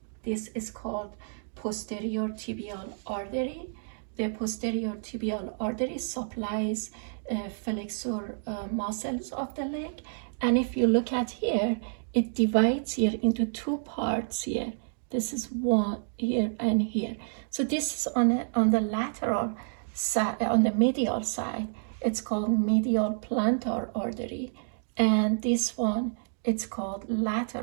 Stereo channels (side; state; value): left; silent; digital silence